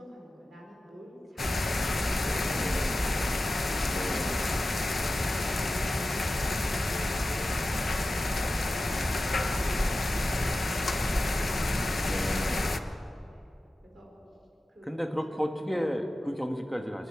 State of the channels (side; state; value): both; normal; correlation 0.94